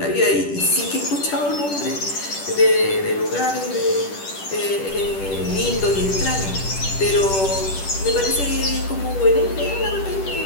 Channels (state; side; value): late; right; 10 ms